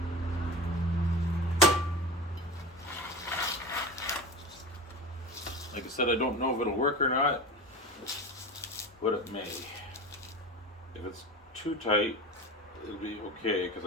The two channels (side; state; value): both; normal; correlation 0.30